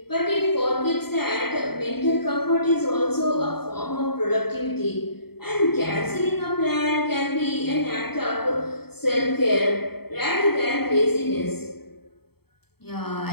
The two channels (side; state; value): right; late; 0.96 ms